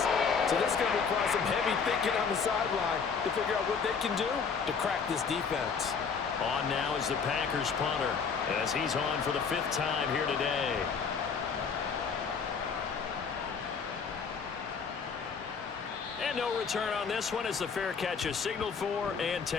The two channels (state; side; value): quieter; right; 5.8 dB